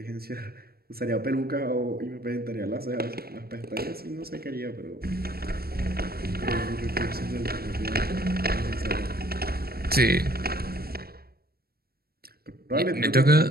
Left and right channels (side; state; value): left; late; 0.45 ms